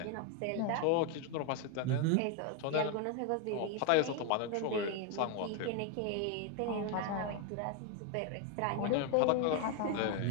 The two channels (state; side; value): different; both; correlation 0.01